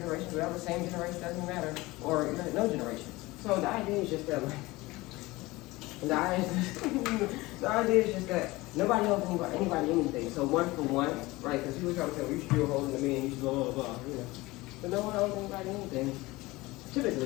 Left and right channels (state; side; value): quieter; right; 20.8 dB